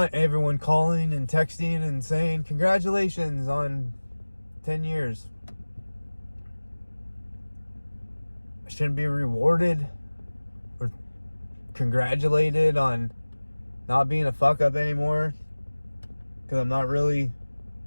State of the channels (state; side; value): inverted; both; correlation -1.00